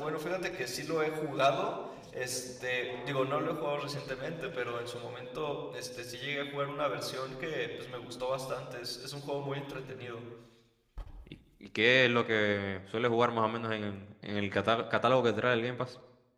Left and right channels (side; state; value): both; identical; correlation 1.00